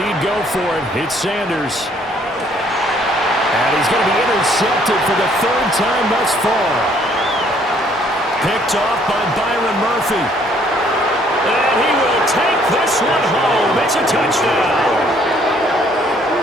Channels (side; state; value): both; normal; correlation 0.63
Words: go for it. It's Sanders. And he's going to be intercepted for the third time thus far. Picked off by Byron Murphy. And he will take this one home. It's a touchdown.